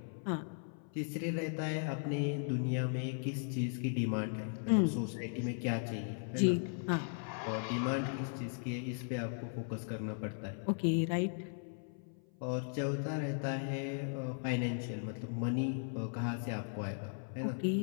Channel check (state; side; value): silent; right; 53 dB below the other